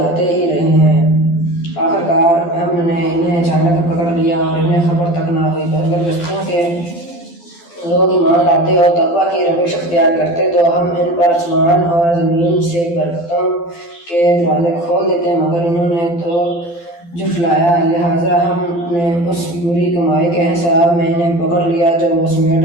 آتے ہی رہے ہیں۔ آخر کار ہم نے انہیں اچانک پکڑ لیا اور انہیں خبر تک نہ ہوئی۔ اگر بستیوں کے لوگ ایمان لاتے اور تقویٰ کی روش اختیار کرتے تو ہم ان پر آسمان اور زمین سے برکتوں کے دروازے کھول دیتے، مگر انہوں نے تو جھٹلایا، لہٰذا ہم نے اس بری کمائی کے حساب میں انہیں پکڑ لیا جو وہ سمیٹ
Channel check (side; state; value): right; late; 12 ms